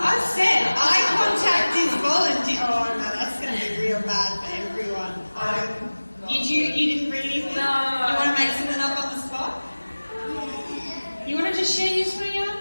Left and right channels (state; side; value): inverted; both; correlation -1.00